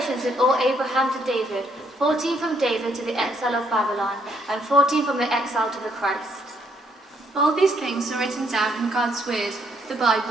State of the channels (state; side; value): normal; both; correlation 0.70